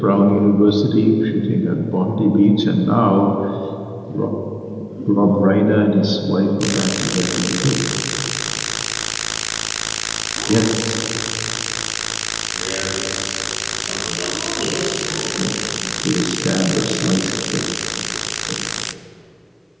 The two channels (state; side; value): identical; both; correlation 1.00